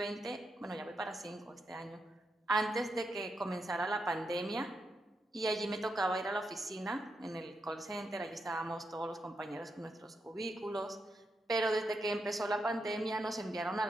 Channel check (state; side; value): normal; both; correlation 0.83